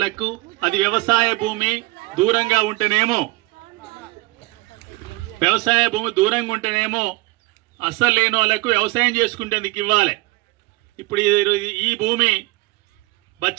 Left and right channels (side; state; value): left; quieter; 22.0 dB